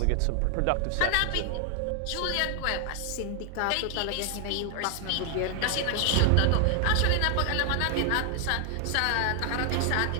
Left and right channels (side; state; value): both; different; correlation 0.00